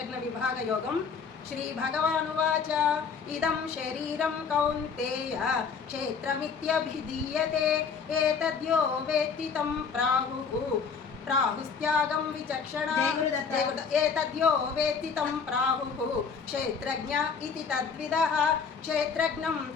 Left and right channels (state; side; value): quieter; right; 5.9 dB